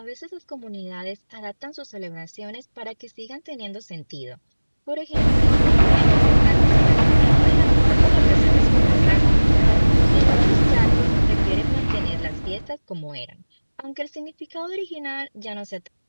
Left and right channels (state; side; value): inverted; both; correlation -1.00